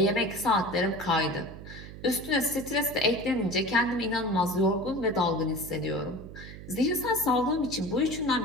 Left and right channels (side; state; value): right; noise; hum, 13 dB below the sound